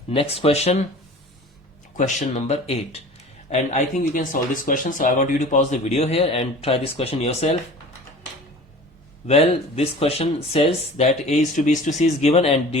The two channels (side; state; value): both; normal; correlation 0.42